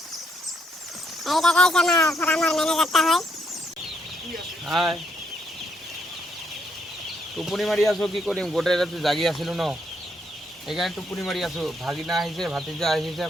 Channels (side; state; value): both; normal; correlation 0.74